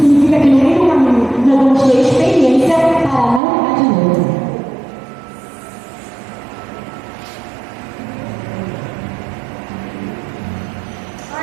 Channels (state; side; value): drops out; left; at 3.4 s